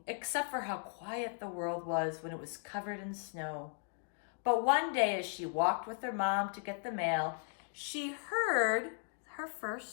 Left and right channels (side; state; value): right; silent; 53 dB below the other